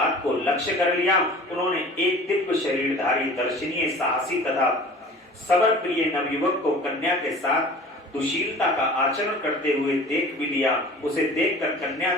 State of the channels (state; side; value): normal; both; correlation 0.43